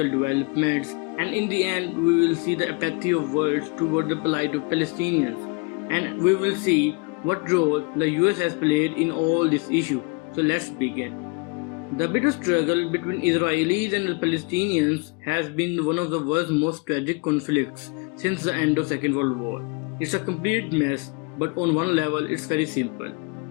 developments, and in the end we will see the apathy of world toward the plight of Palestinians, and we will see what role the US has played in all this issue. So let's begin. The bitter struggle between Israelis and the Palestinians has been one of the world's most tragic conflicts since the end of Second World War. It's a complete mess, but on one level it's very simple.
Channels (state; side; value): quieter; right; 29.9 dB